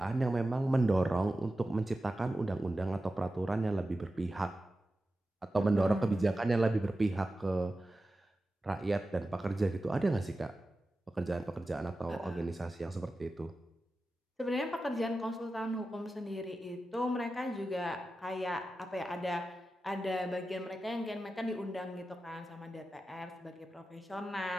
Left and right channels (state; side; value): normal; both; correlation 0.93